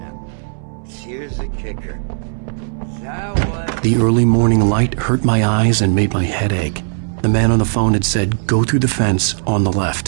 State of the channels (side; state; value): left; silent; digital silence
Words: Here's here's the kicker. That was... The early morning light hurt my eyes and made my head ache. The man on the phone had said, "Go through the fence on the